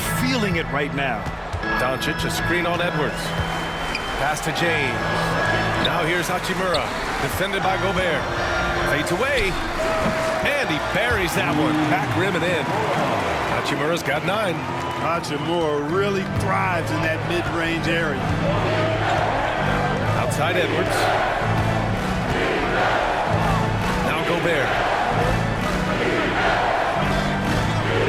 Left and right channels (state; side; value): identical; both; correlation 1.00